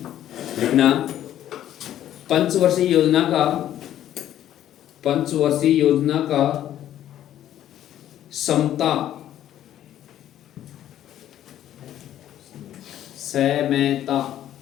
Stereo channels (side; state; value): right; quieter; 11.8 dB